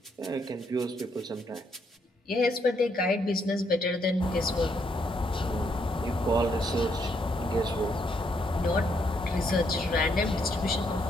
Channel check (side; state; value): both; normal; correlation 0.74